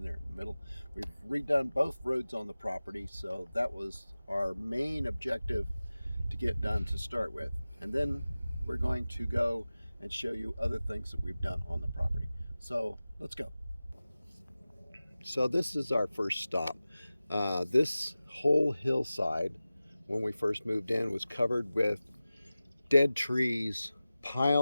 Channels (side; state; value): both; inverted; correlation -0.96